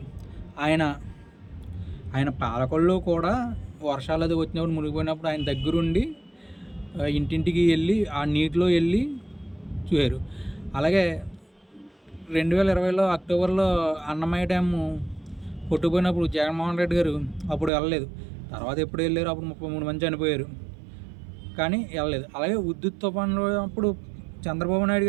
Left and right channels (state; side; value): drops out; left; at 17.7 s